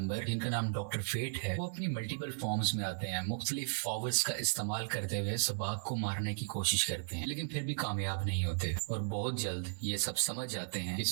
जिनका नाम डॉक्टर फेट है, वो अपनी मल्टीपल फॉर्म्स में आते हैं, मुख्तलिफ पावर्स का इस्तेमाल करते हुए सबाक को मारने की कोशिश करते हैं, लेकिन फिर भी कामयाब नहीं होते और बहुत जल्द ये सब समझ जाते हैं कि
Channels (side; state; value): left; silent; 54 dB below the other